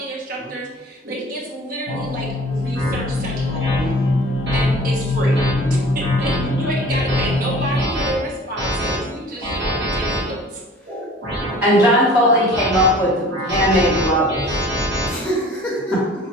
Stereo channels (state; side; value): normal; both; correlation 0.46